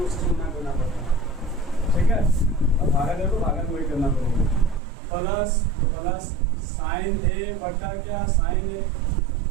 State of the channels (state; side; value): drops out; left; at 4.8 s